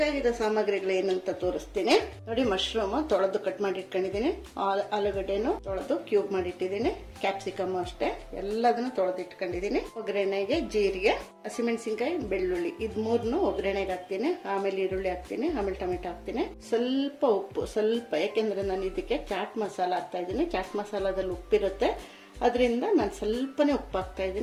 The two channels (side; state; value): both; identical; correlation 1.00